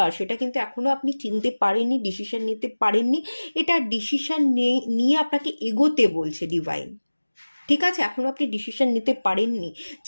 সেটা কিন্তু এখনো আপনি চিনতে পারেননি, ডিসিশন নিতে পারেননি। এটা ডিসিশন নিয়ে আপনাকে এগোতে বলছে ডিভাইন, ঠিক আছে? এখনো আপনি ডিসিশন নিতে পারেননি,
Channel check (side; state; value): both; inverted; correlation -1.00